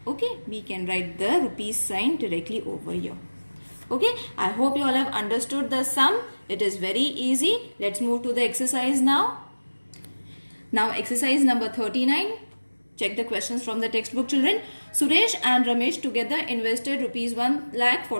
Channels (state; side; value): inverted; both; correlation -1.00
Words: Okay, we can write the rupees sign directly over here. Okay, I hope you all have understood the sum. It is very easy. Let's move to the exercise now. Now exercise number 39. Check the questions from the textbook, children. Suresh and Ramesh together invested rupees